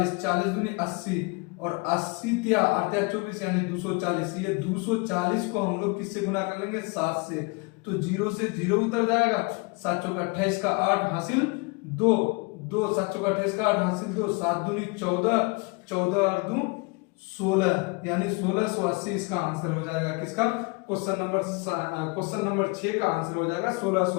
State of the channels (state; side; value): quieter; right; 29.8 dB